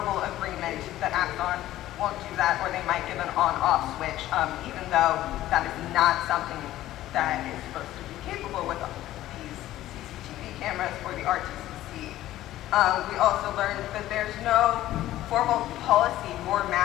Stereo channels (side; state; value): right; quieter; 14.4 dB